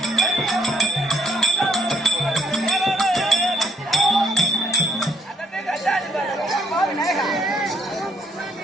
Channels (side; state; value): both; normal; correlation 0.68